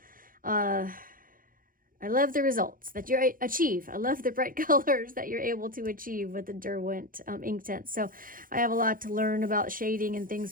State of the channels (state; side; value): late; left; 0.40 ms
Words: I love the results that you achieve. I love the bright colors that you're able to achieve with the Derwent Inktense. So I have a lot to learn about shading and